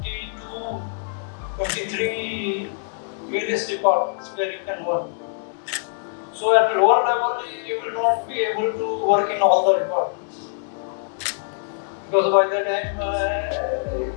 23 various departments where you can work. So at lower level you will not be able to work in all the departments. Because by the time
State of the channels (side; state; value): right; silent; digital silence